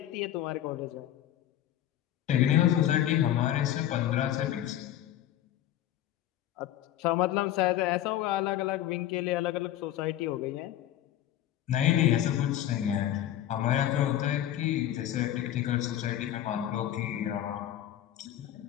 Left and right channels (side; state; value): right; quieter; 12.2 dB